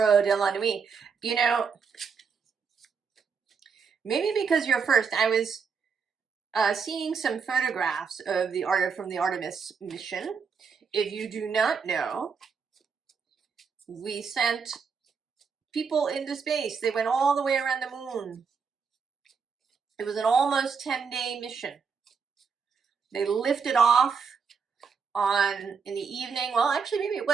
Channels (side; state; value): left; quieter; 5.8 dB